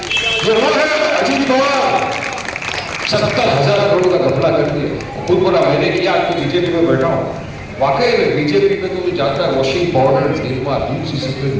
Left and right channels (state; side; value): identical; both; correlation 1.00